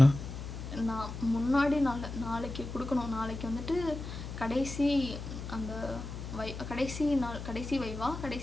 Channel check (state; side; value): noise; left; hum, 8 dB below the sound